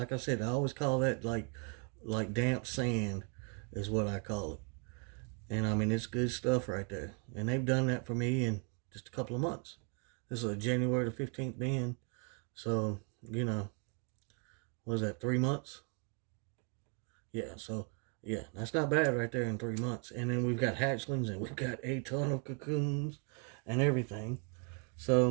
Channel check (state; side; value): quieter; left; 37.2 dB